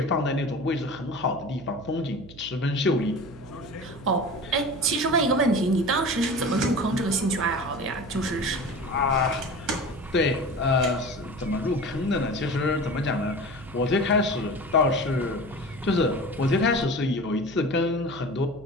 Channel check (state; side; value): noise; right; hum, 18 dB below the sound